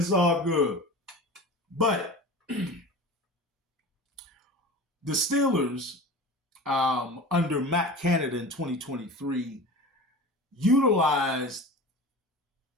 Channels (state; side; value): normal; both; correlation 0.34